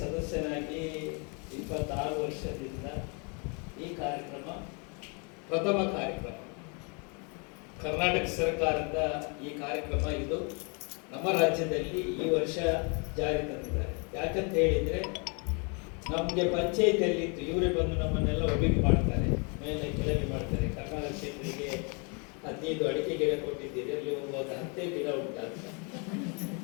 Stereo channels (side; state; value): right; quieter; 34.6 dB